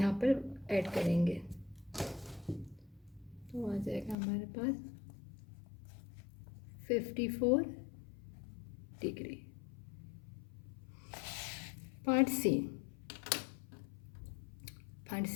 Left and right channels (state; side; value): drops out; right; at 4.2 s